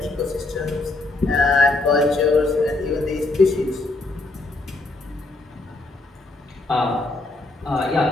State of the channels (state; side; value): quieter; right; 3.1 dB